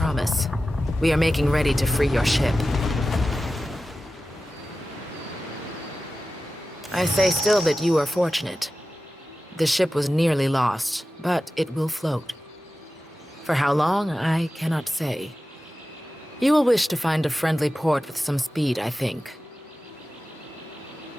We are making ready to free your ship. I say still that you are fortunate. The ship was nearly lost, but it will float. For how long, I cannot say. You will wish to find a friendly port with some speed, I think.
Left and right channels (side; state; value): both; normal; correlation 0.94